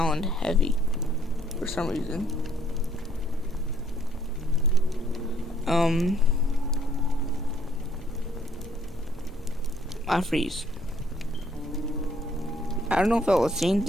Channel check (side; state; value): both; normal; correlation 0.64